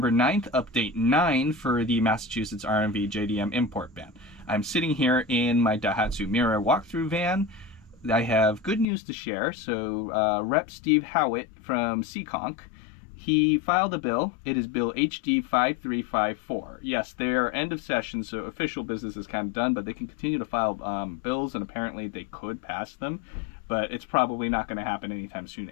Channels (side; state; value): right; drops out; at 8.8 s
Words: 9th, update 9 for the Massachusetts RMV JDM import ban. I'm sitting here in my Daihatsu Mirai walkthrough van. I have good news to share. So Rep. Steve Howitt from Seekonk, he filed a bill. It is Bill HD 5354. Yes, they are end of session, so official business is kind of done, but they can continue to file bills, and apparently they could pass them. But it's probably not going to happen anytime soon